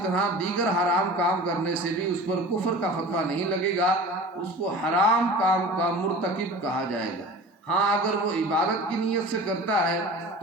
طرح دیگر حرام کام کرنے سے بھی اس پر کفر کا فتویٰ نہیں لگے گا، اس کو حرام کام کا مرتکب کہا جائے گا۔ ہاں اگر وہ عبادت کی نیت سے کرتا ہے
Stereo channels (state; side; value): normal; both; correlation 0.38